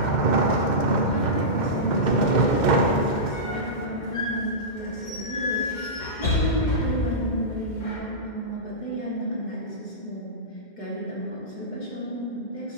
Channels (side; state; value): right; late; 2.1 ms